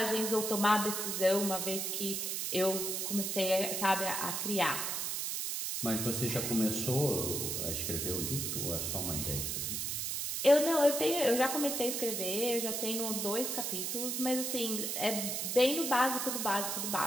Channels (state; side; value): noise; right; hiss, 1 dB below the sound